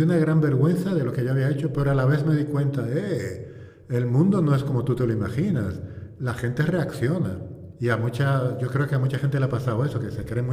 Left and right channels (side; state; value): both; identical; correlation 1.00